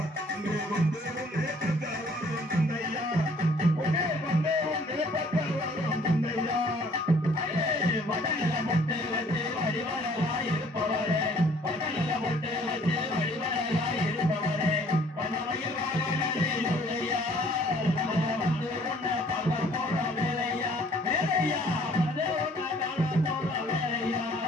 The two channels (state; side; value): normal; both; correlation 0.58